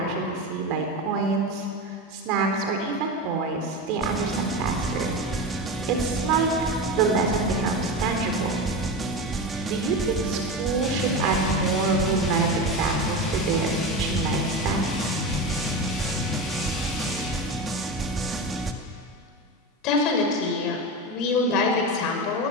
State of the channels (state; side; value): normal; both; correlation 0.22